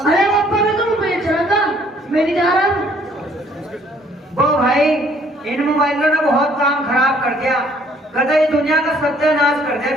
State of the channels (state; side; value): normal; both; correlation 0.61